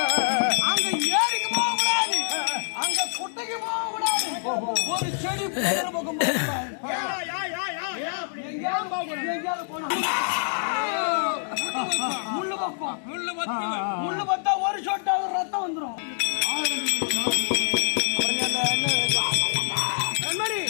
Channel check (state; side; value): silent; right; digital silence